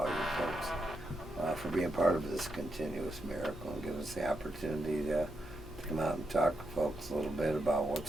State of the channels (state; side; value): normal; both; correlation 0.83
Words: you folks for being part of this continuous miracle and giving us the opportunity to come out and talk to folks a little bit about